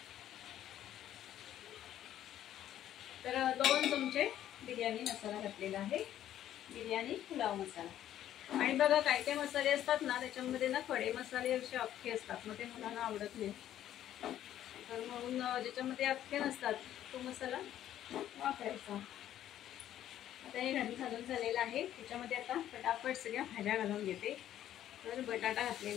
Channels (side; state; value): right; quieter; 11.7 dB